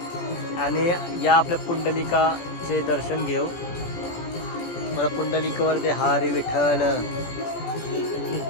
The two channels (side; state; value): right; late; 17 ms